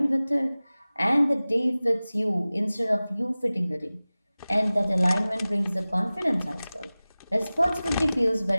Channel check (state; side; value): inverted; both; correlation -0.98